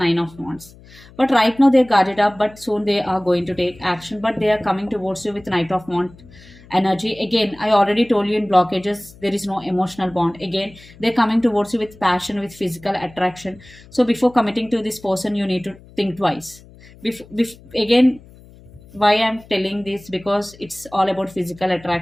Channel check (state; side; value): noise; left; hum, 23 dB below the sound